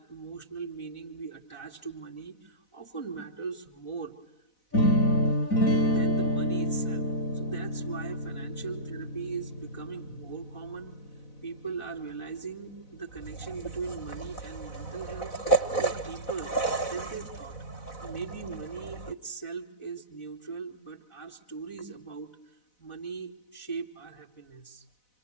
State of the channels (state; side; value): late; right; 4.0 ms